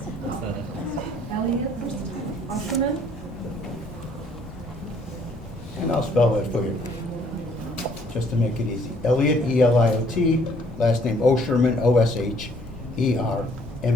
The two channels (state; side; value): normal; both; correlation 0.62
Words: Elliot Usherman. And I'll spell that for you, just to make it easy. Elliot, E-L-I-O-T, last name Osherman, O-S-H-E-R-M-A-N.